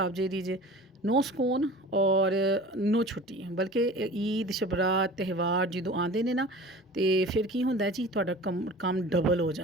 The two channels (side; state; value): both; normal; correlation 0.40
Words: ਜਿਹੜੀ ਜੇ, ਨੋ ਸਕੂਨ ਔਰ ਨੋ ਛੁੱਟੀ। ਬਲਕਿ ਈਦ ਸ਼ਬਰਾਤ ਤਿਉਹਾਰ ਜਦੋਂ ਆਉਂਦੇ ਨੇ ਨਾ ਤੇ ਫਿਰ ਕੀ ਹੁੰਦਾ ਜੀ, ਤੁਹਾਡਾ ਕੰਮ ਡਬਲ ਹੋ